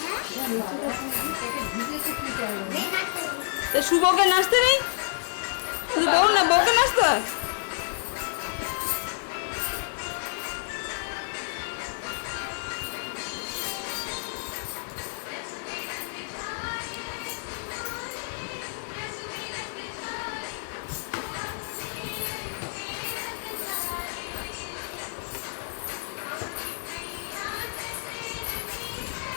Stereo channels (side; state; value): right; silent; digital silence